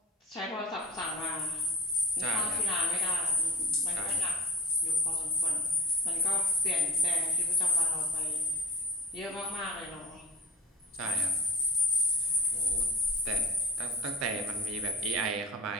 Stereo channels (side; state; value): both; normal; correlation 0.34